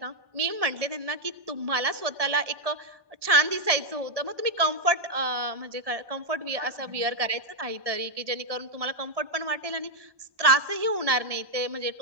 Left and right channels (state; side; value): late; left; 1.2 ms